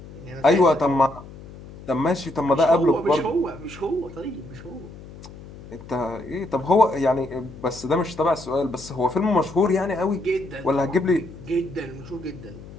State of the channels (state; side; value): noise; left; hum, 16 dB below the sound